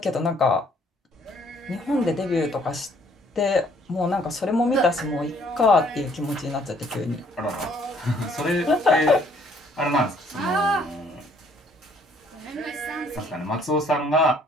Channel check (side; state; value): both; normal; correlation 0.63